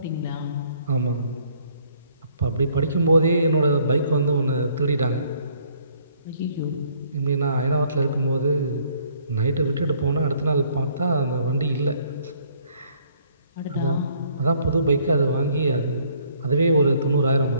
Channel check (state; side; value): inverted; both; correlation -0.63